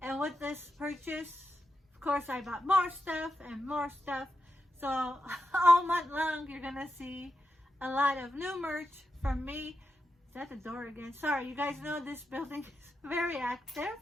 And with this purchase, of course, I bought more stuff and more stuff. So all month long, you're gonna see a lot of new merch from me. Is that the door again? Sorry, you guys know this building is very active.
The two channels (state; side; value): normal; both; correlation 0.87